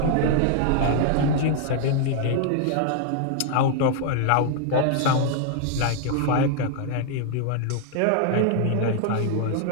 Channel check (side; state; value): both; different; correlation 0.00